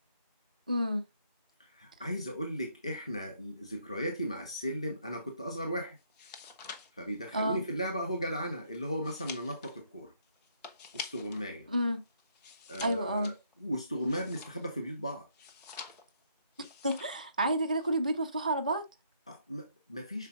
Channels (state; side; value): inverted; both; correlation -0.70